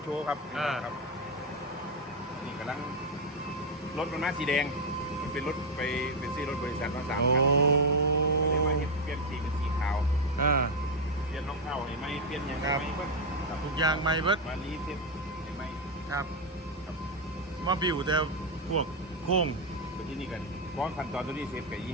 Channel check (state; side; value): normal; both; correlation 0.06